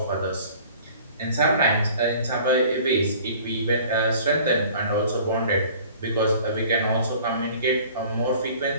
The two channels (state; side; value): inverted; both; correlation -0.49